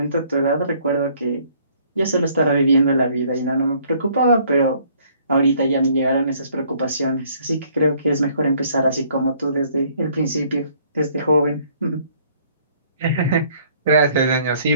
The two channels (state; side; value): inverted; both; correlation -0.61